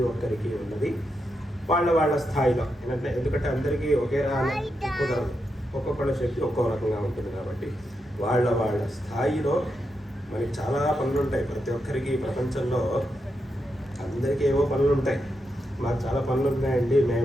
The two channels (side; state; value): both; normal; correlation 0.85